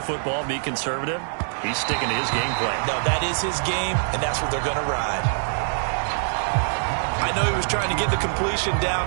football, be conservative. He's sticking to his game plan. No, that is his game, and that's what they're going to ride. I know he was trying to get the completion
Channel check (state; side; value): silent; left; digital silence